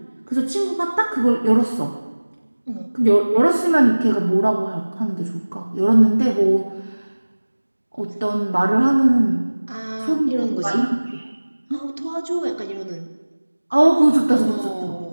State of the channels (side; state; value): both; inverted; correlation -1.00